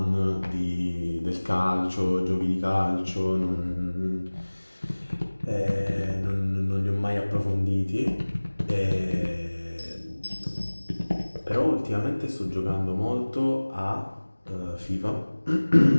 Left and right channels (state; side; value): inverted; both; correlation -1.00